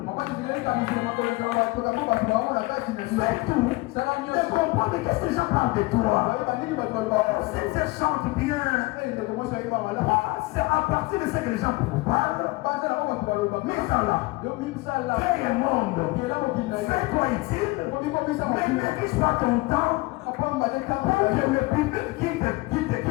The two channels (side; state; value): right; quieter; 22.6 dB